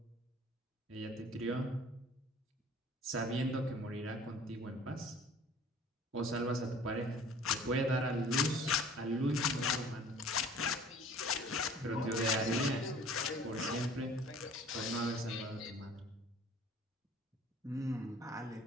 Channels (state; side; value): normal; both; correlation 0.49